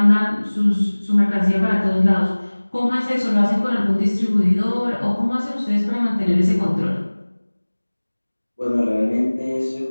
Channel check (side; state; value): both; inverted; correlation -1.00